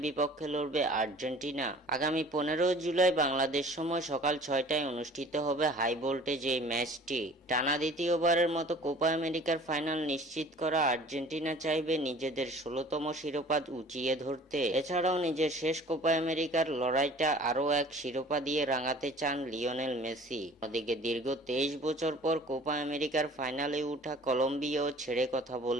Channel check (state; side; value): normal; both; correlation 0.48